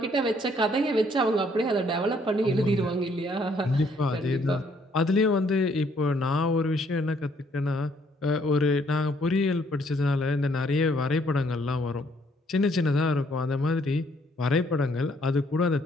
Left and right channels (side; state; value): both; normal; correlation 0.66